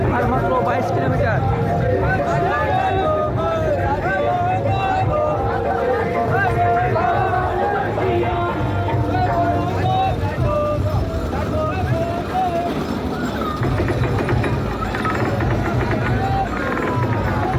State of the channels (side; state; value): both; identical; correlation 1.00